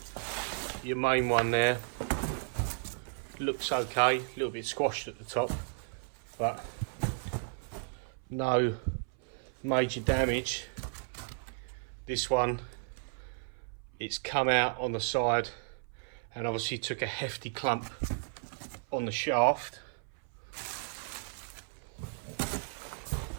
your main one there, looks okay, a little bit squashed at the top, but no major damage. This one, it's come out on the side and obviously took a hefty clump on the shaft.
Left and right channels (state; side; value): silent; left; 55 dB below the other